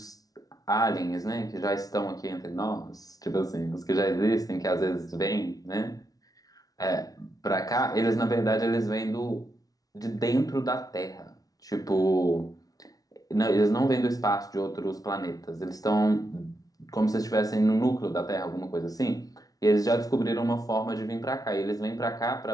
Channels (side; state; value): right; late; 0.18 ms